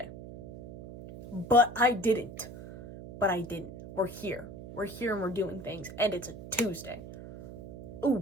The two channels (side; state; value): right; noise; hum, 13 dB below the sound